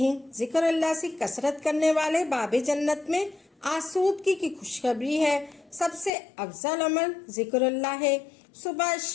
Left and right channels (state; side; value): drops out; right; at 6.1 s